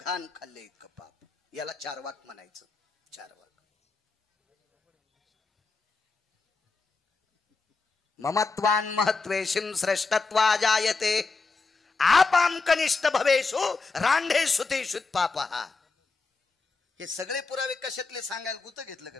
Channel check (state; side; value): quieter; right; 4.2 dB